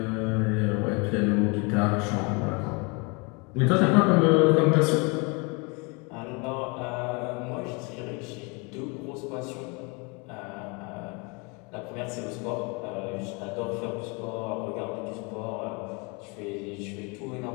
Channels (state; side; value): quieter; right; 30.5 dB